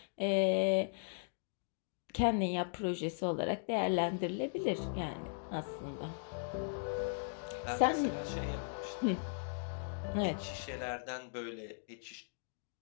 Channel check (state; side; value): silent; right; digital silence